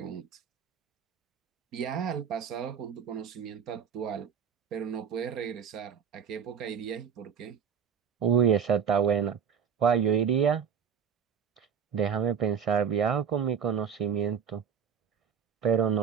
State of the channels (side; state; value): left; quieter; 7.4 dB